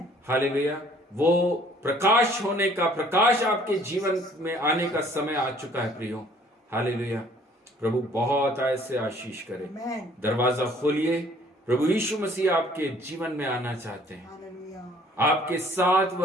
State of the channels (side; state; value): both; normal; correlation 0.57